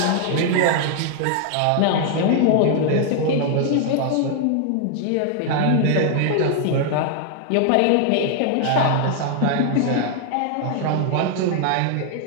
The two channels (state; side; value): different; both; correlation 0.00